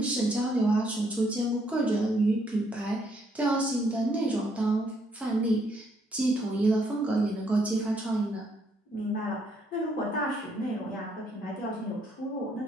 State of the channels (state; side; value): normal; both; correlation 0.71